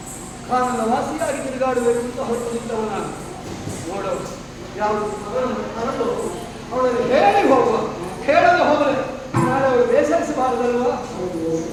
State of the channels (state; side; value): identical; both; correlation 1.00